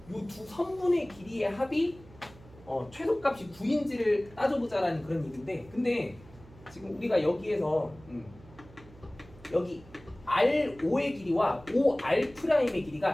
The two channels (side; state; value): right; noise; hum, 22 dB below the sound